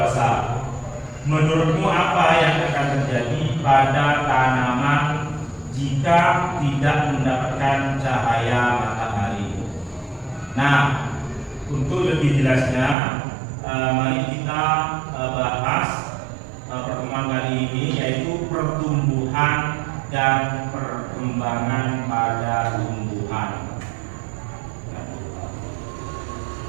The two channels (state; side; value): drops out; left; at 13.0 s